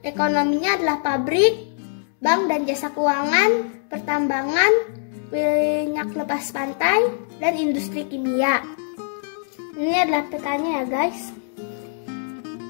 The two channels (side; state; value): right; silent; 64 dB below the other